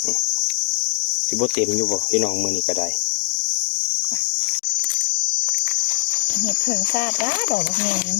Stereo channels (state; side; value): silent; right; digital silence